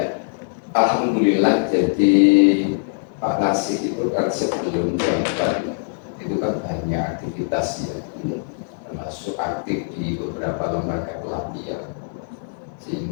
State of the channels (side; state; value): right; silent; digital silence